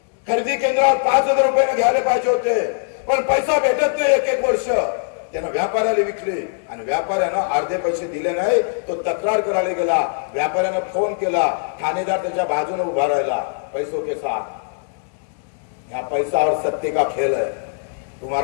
खरेदी केंद्रावर 5000 रुपयाने घ्यायला पाहिजे होते पण पैसा भेटत नाही. एक वर्ष त्यानं व्यापाऱ्याला विकले आणि व्यापाऱ्यानं अर्धे पैसे दिले नाही. तो तक्रार करायला गेला. व्यापाऱ्यानं फोन केला. ठाणेदार त्याच्या बाजूने उभा राहिला पैसों के साथ. या पैसा और सत्ते का खेल है.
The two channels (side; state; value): right; silent; 65 dB below the other